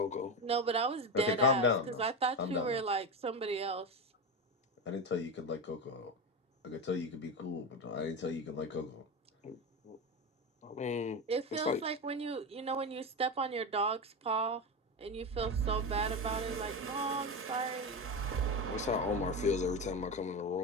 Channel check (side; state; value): both; normal; correlation 0.18